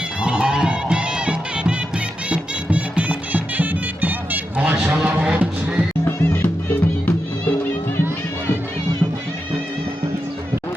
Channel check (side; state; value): both; normal; correlation 0.88